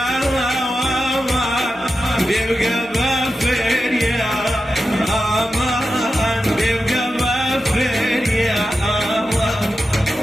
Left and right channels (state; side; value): normal; both; correlation 0.91